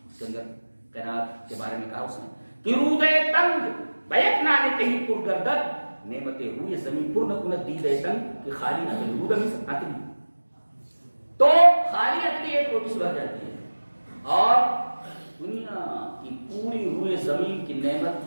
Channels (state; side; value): inverted; both; correlation -1.00